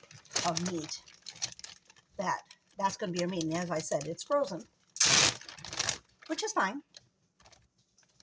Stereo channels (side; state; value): both; identical; correlation 1.00